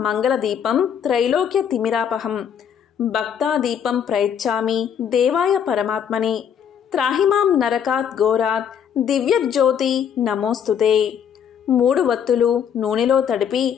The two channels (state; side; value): quieter; right; 8.2 dB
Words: మంగళదీపం త్రైలోక్య తిమిరాపహం భక్తాదీపం ప్రయచ్చామి దేవాయ పరమాత్మనే త్రాహిమాం నరకాత్ ఘోరాత్ దివ్యజ్యోతి నమోస్తుతే. 3 వత్తులు నూనెలో తడిపి